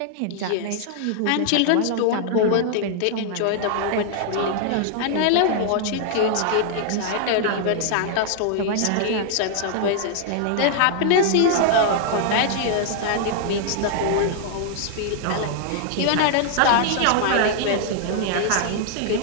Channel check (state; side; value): different; both; correlation 0.00